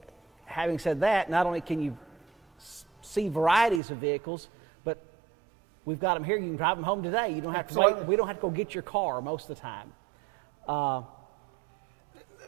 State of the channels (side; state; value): left; drops out; at 3.8 s